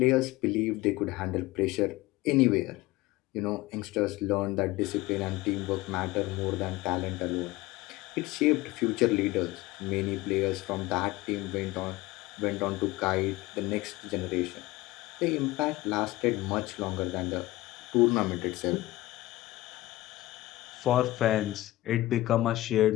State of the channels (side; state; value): right; quieter; 17.9 dB